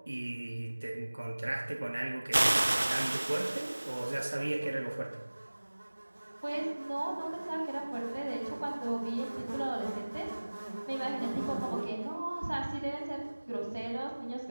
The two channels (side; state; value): both; inverted; correlation -1.00